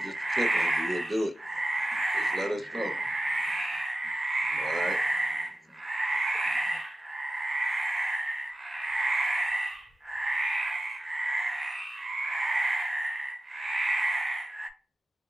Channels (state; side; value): normal; both; correlation 0.93